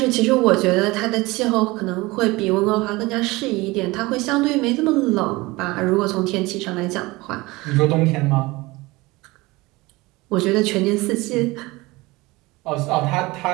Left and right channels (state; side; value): quieter; left; 21.8 dB